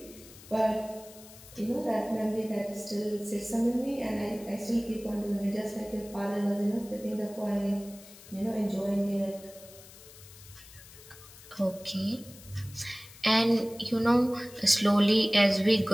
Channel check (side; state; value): left; noise; hiss, 20 dB below the sound